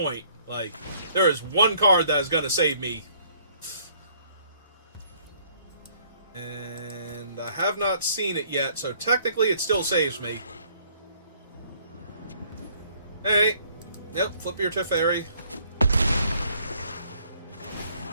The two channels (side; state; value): both; inverted; correlation -0.62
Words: Like, there is one card that is going to save me. And I have not seen it yet, so technically it still saves me. Hey. Yep, flip your Teferi.